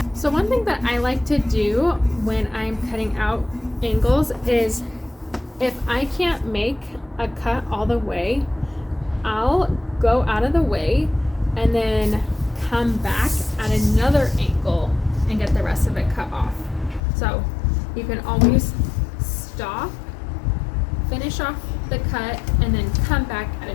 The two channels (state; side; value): drops out; right; at 17.0 s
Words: So one thing that I like to do when I'm cutting out angles is, if I can't make a cut all the way, I'll go out of the way and then come back at another angle and get the rest of it cut off. So you can always stop, finish off the cut, and then come back at a